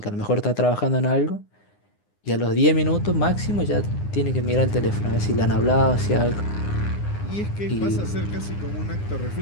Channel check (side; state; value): right; late; 9.8 ms